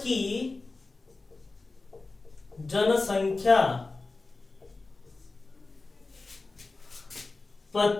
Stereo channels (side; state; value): right; quieter; 3.5 dB